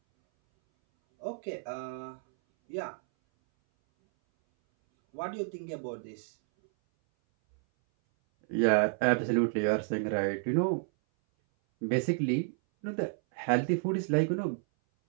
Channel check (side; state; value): left; silent; 57 dB below the other